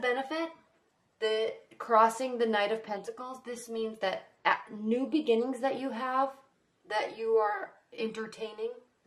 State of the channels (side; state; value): both; identical; correlation 1.00